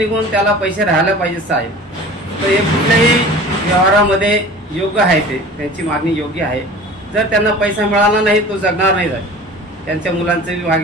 त्याला पैसे राहायला पाहिजे साहेब। तर हे कुठल्याही व्यवहारामध्ये योग्य आहे, त्यांची मागणी योग्य आहे। जर त्यांना पैसा मिळाला नाही तो जगणार नाही साहेब। त्यांच्या मुलांचं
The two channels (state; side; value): normal; both; correlation 0.41